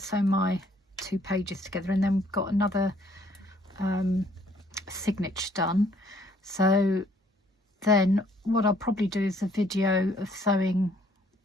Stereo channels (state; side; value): normal; both; correlation 0.63